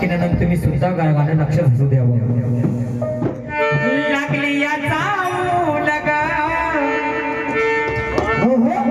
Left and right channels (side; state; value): both; identical; correlation 1.00